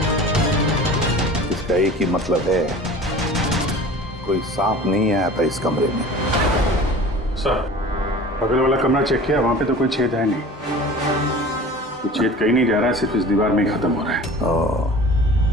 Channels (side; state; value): both; normal; correlation 0.41